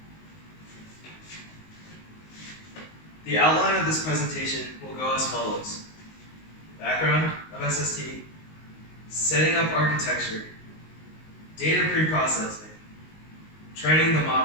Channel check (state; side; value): late; right; 19 ms